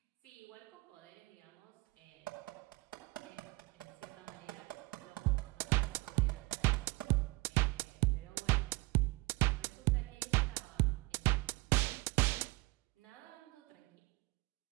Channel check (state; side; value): quieter; left; 24.1 dB